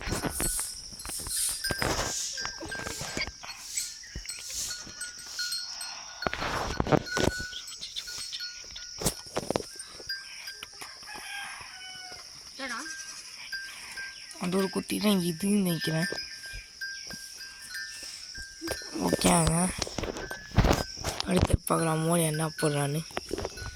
அந்த ஒரு குட்டி தான் இதுன்னு நினைக்கிறேன். ஓகேங்க, அடுத்து பார்க்கலாம் மோடி என்ன போடுறான்னு.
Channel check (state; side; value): identical; both; correlation 1.00